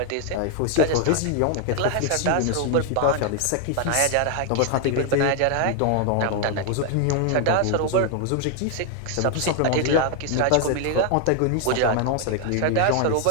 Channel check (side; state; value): both; different; correlation 0.00